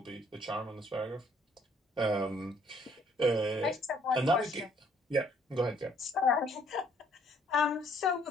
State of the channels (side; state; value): both; normal; correlation 0.63